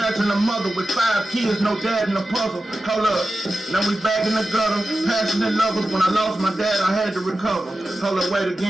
a mother with 5 kids, no dad in the puzzle. Hold up, now we back in the gutter. Passionate lovers, when I lost my dad, I had to recover. Hold up, wait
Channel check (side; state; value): both; normal; correlation 0.93